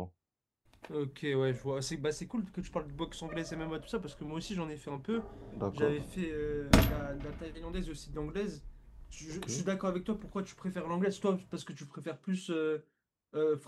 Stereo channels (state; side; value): identical; both; correlation 1.00